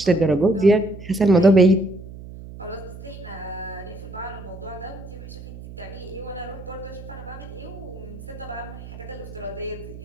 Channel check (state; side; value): noise; right; hum, 14 dB below the sound